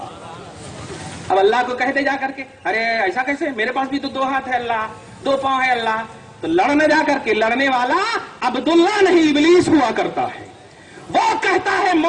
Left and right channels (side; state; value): both; identical; correlation 1.00